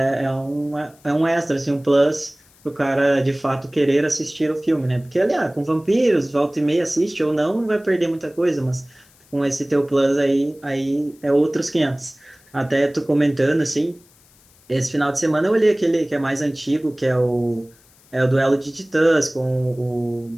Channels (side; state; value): left; noise; hiss, 30 dB below the sound